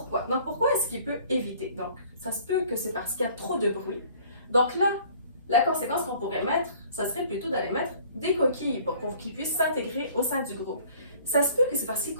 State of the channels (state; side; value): inverted; both; correlation -0.53